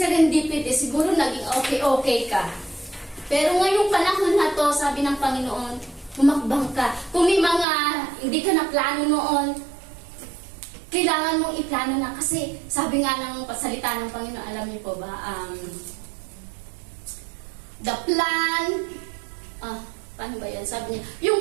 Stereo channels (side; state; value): left; drops out; at 7.7 s